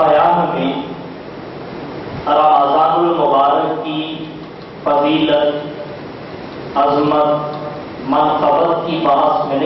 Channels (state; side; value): identical; both; correlation 1.00